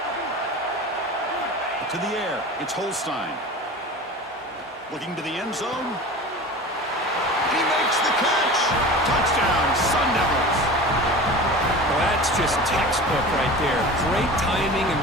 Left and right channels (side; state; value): both; normal; correlation 0.35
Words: To the air, it's Holstein. Looking to the end zone. He makes the catch. Touchdown, Sun Devils. Well, that's just textbook right there. Great timing and